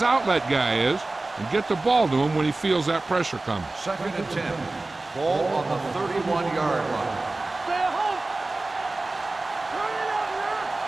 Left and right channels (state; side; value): quieter; left; 3.1 dB